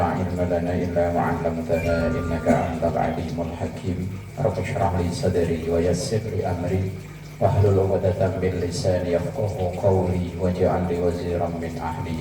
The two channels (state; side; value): identical; both; correlation 1.00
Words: ilma lana illa ma 'allamtana innaka antal alimul hakim. Rabbi shrah li sadri wa yassir li amri wahlul 'uqdatam min lisani yafqahu qawli waj'al li waziran min